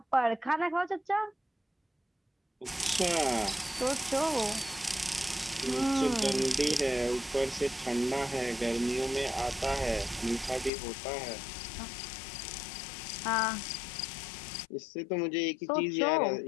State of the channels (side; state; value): right; drops out; at 10.7 s